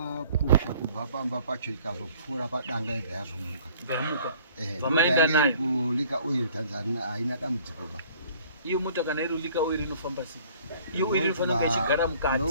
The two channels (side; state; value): both; inverted; correlation -0.54